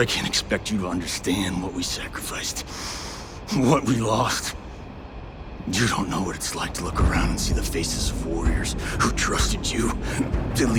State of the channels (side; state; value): both; identical; correlation 1.00